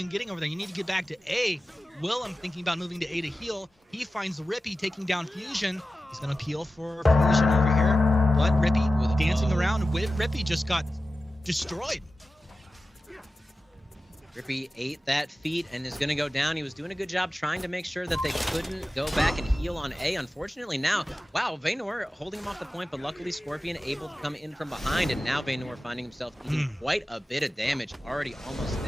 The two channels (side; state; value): both; normal; correlation 0.94